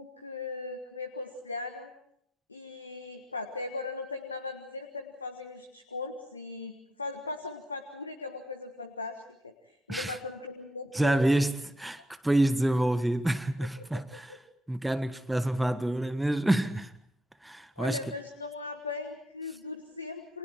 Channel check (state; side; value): normal; both; correlation 0.76